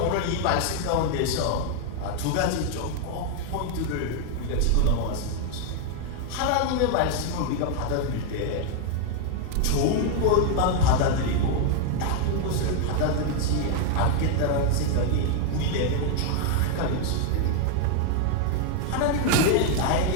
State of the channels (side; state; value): both; different; correlation 0.00